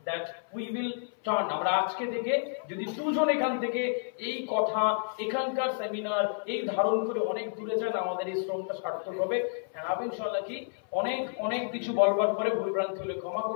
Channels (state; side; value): silent; right; 58 dB below the other